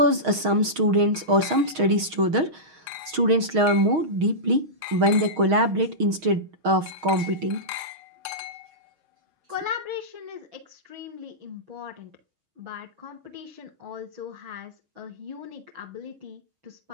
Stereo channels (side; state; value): left; late; 6.4 ms